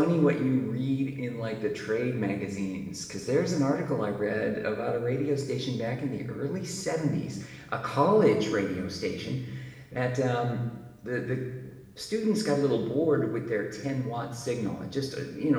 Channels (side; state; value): both; identical; correlation 1.00